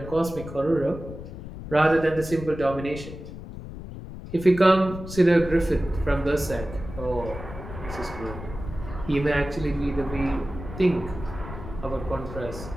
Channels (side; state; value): left; noise; rumble, 11 dB below the sound